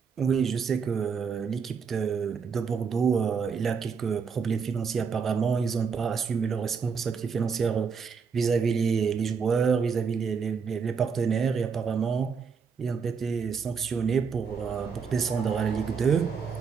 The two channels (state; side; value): quieter; left; 5.9 dB